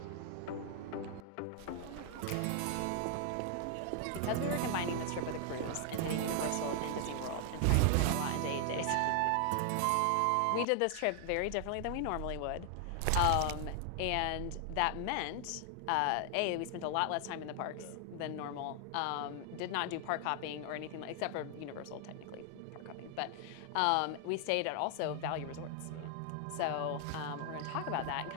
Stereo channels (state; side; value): different; both; correlation 0.00